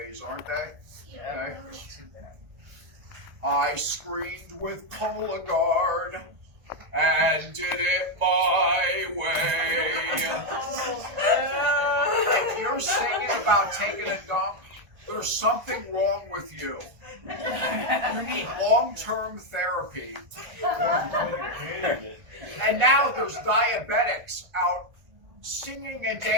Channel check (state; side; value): late; left; 1.5 ms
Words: aren't they? Okay. I screamed with Cologuard and did it my way. If you're singing about taking a dump, there's something wrong with you. You need long-term therapy. And now there's diabetics out singing and